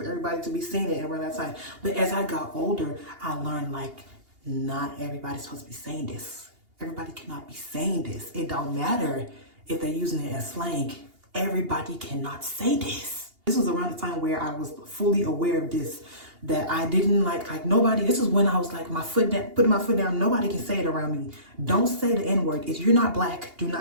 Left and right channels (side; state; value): left; late; 2.8 ms